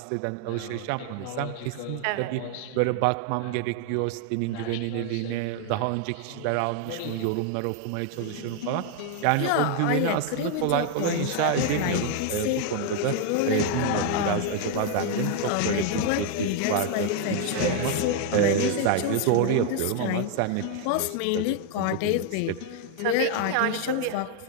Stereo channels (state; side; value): different; both; correlation 0.00